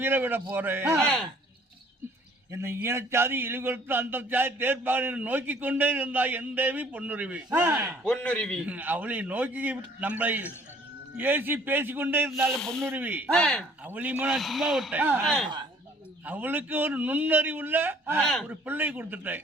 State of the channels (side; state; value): both; normal; correlation 0.57